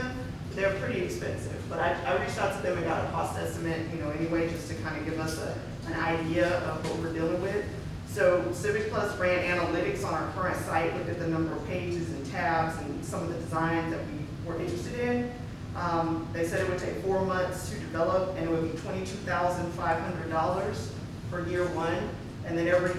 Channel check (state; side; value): identical; both; correlation 1.00